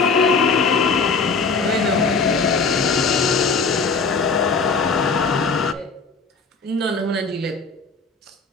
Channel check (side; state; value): right; quieter; 4.6 dB